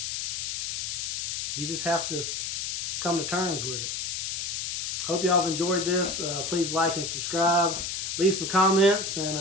You just have to come to terms with it. Hope y'all have enjoyed this. Please like and subscribe. Leave some comments,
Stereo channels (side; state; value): left; noise; hiss, 2 dB below the sound